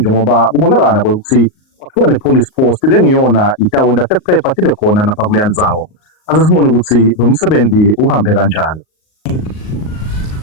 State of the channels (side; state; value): right; late; 38 ms